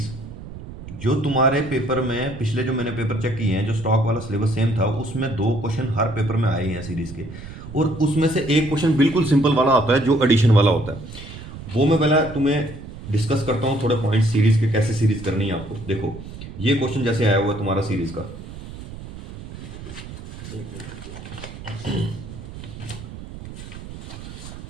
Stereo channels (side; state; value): right; noise; rumble, 13 dB below the sound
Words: जो तुम्हारे पेपर में पिछले जो मैंने पेपर चेक किए हैं, जो स्टॉक वाला सिलेबस सेम था, उसमें 2 क्वेश्चन हर पेपर में आए हैं सीरीज के, और उसमें से एक क्वेश्चन बिल्कुल सिंपल वाला आता है जो एडिशन वाला होता है। वो मैं पहले तुम्हें डिस्कस करता हूँ थोड़े पॉइंट सीरीज के, कैसे सीरीज करनी है आपको। देखो ये क्वेश्चन जैसे आया हुआ है तुम्हारा सीरीज का,